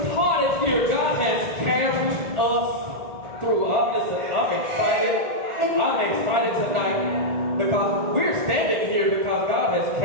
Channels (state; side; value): late; left; 1.4 ms